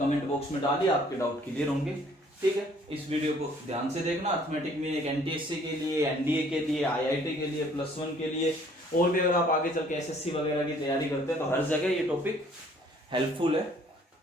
बॉक्स में डालिए, आपके डाउट क्लियर होंगे, ठीक है। इस वीडियो को ध्यान से देखना। अर्थमेटिक मीन एक एनटीएससी के लिए, एनडीए के लिए, आईआईटी के लिए, +1 के लिए, और भी अगर आप आगे चल के एसएससी वगैरह की तैयारी करते हैं तो हर जगह ये टॉपिक हेल्पफुल है।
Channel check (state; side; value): normal; both; correlation 0.59